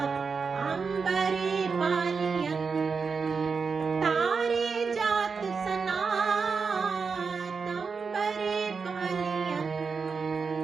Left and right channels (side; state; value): left; quieter; 5.2 dB